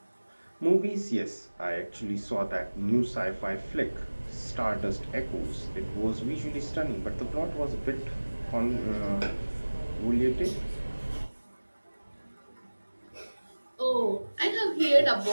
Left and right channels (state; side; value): inverted; both; correlation -1.00